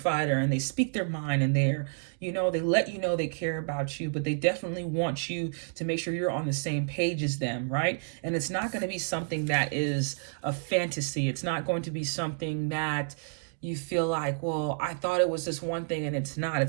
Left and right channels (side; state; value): left; silent; digital silence